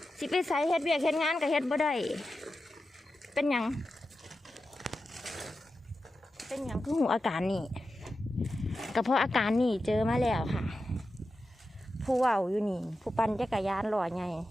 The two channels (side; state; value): both; normal; correlation 0.91